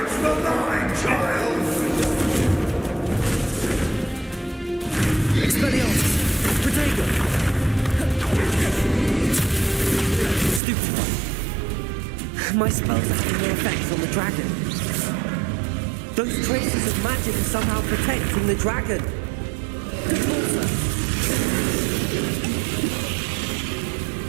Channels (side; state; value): left; drops out; at 10.6 s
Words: for mine, child! Expelliarmus! Protego! Stupefy! My spells are having no effect on the dragon. Those traces of magic are somehow protecting the dragon.